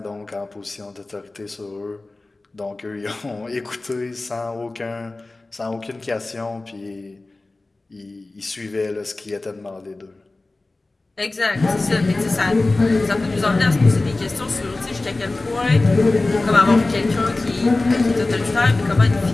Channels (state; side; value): quieter; right; 3.1 dB